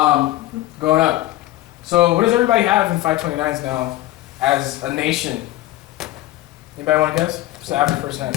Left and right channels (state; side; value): quieter; right; 16.0 dB